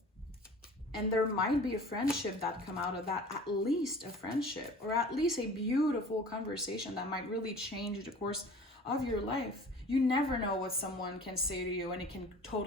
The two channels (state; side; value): normal; both; correlation 0.44